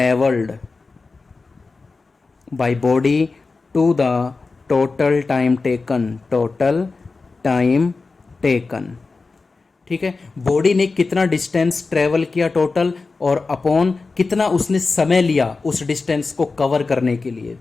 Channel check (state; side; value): quieter; right; 4.0 dB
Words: by body to the total time taken, total time taken. ठीक है, बॉडी ने कितना डिस्टेंस ट्रेवल किया टोटल, और अपॉन कितना उसने समय लिया उस डिस्टेंस को कवर करने के लिए।